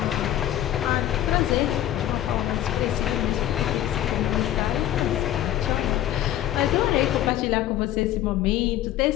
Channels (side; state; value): right; quieter; 12.7 dB